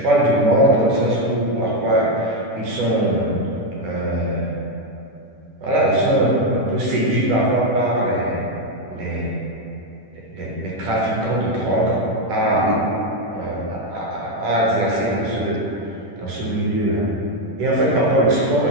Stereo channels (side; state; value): left; late; 10 ms